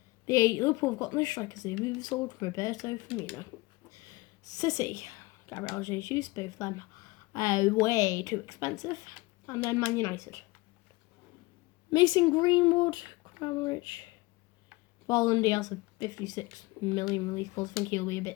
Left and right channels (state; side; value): quieter; right; 22.5 dB